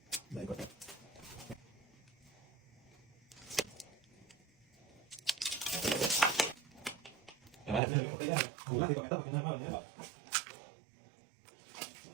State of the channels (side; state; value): left; drops out; at 7.8 s